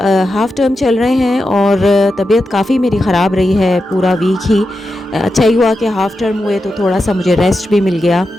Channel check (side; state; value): both; normal; correlation 0.89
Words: हाफ़ टर्म चल रहे हैं और तबीयत काफ़ी मेरी ख़राब रही है पूरा वीक ही। अच्छा ही हुआ कि हाफ़ टर्म हुए तो थोड़ा सा मुझे रेस्ट भी मिल गया।